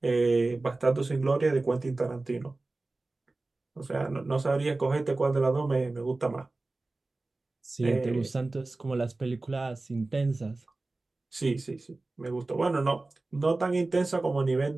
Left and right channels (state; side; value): quieter; left; 3.2 dB